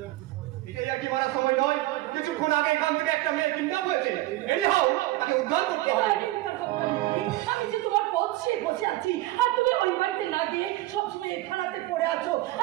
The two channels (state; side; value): quieter; left; 17.6 dB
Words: এটাই আর কি মারার সময় নয়। কিছুক্ষণ আগে এখান থেকে একটা মেয়ে কিডন্যাপ হয়েছে। এনিহাউ তাকে উদ্ধার করতে হবে। আমি যে তোমার পথে বসে আছি আর তুমি ওই বাড়িতে না গিয়ে সবসময় থানাতে পড়ে আছো।